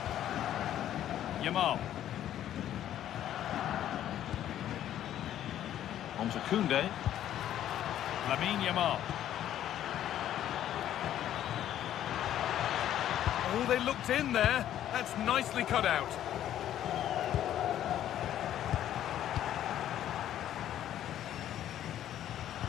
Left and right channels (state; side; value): quieter; right; 11.5 dB